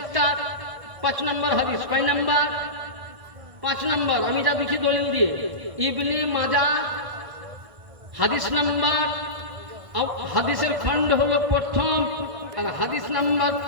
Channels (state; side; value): late; left; 1.5 ms